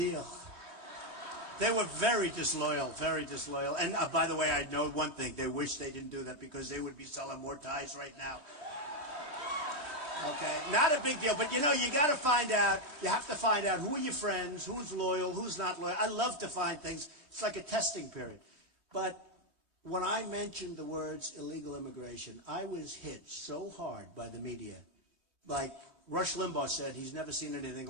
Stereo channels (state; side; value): late; left; 3.2 ms